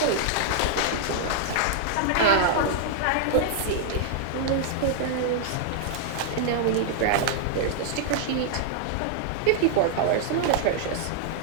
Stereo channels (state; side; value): different; both; correlation -0.01